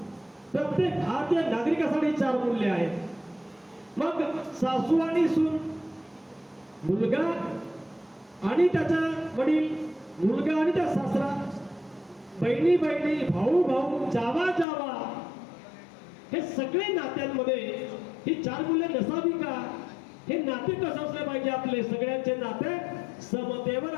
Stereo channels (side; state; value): right; drops out; at 14.7 s